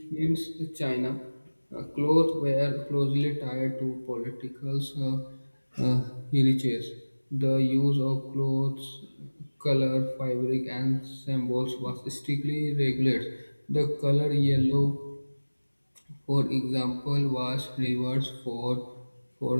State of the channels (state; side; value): inverted; both; correlation -1.00